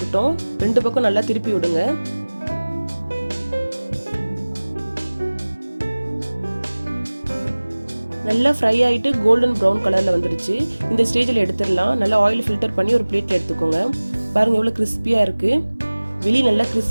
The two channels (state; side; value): inverted; both; correlation -1.00